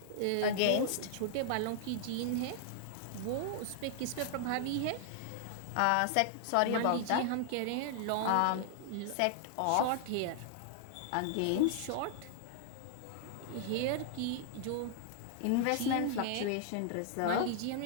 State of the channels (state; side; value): different; both; correlation -0.01